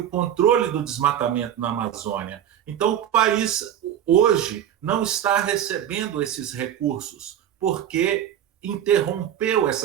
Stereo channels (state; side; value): quieter; left; 10.4 dB